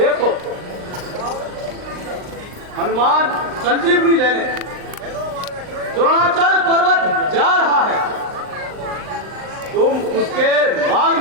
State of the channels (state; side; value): late; left; 39 ms